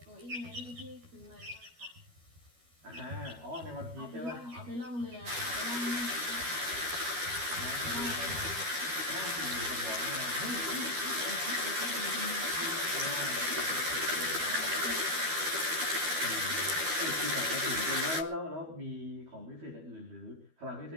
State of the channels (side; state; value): left; late; 12 ms